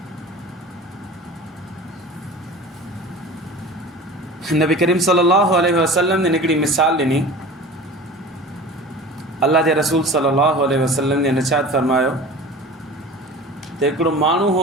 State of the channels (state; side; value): normal; both; correlation 0.37